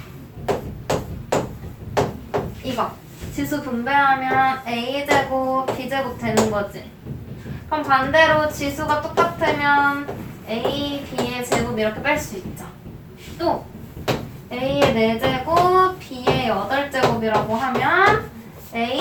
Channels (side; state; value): both; identical; correlation 1.00